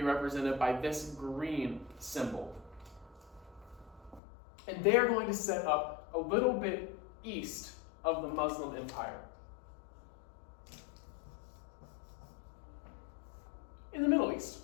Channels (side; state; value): right; drops out; at 4.2 s